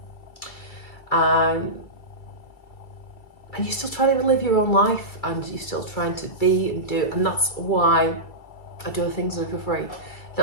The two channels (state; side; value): late; right; 2.3 ms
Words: And you're still trying to live your own life, and you're still trying to be and do, and that's why I do the things that are for free.